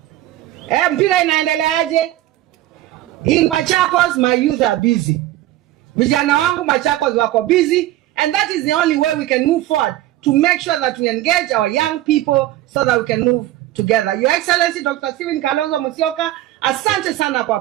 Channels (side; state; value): left; quieter; 14.9 dB